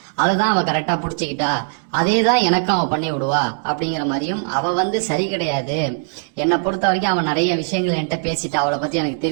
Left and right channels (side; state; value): left; silent; digital silence